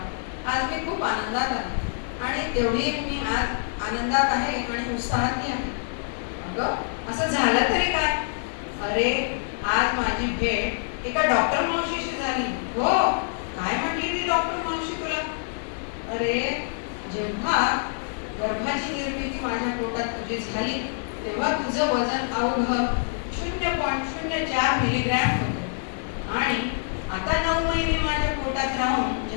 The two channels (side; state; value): right; silent; digital silence